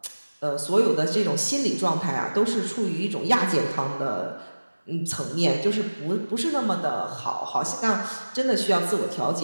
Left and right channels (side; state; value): both; inverted; correlation -1.00